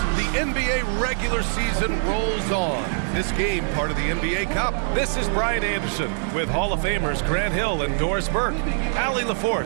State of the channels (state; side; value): silent; left; 63 dB below the other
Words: The NBA regular season rolls on. This game, part of the NBA Cup. This is Brian Anderson with Hall of Famers Grant Hill and Doris Burke. Allie